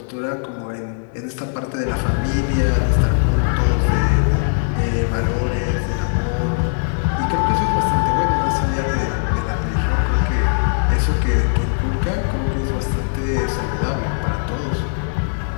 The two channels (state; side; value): silent; right; 63 dB below the other